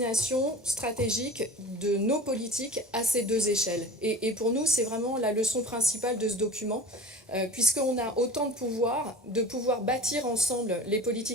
stratégique de nos politiques à ces deux échelles. Et pour nous, c'est vraiment la leçon principale de ce document, puisqu'on a autant de pouvoir bâtir ensemble les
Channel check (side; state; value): both; normal; correlation 0.37